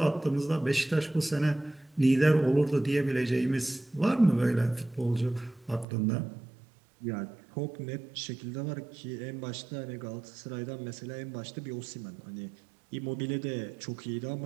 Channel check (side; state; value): left; drops out; at 5.9 s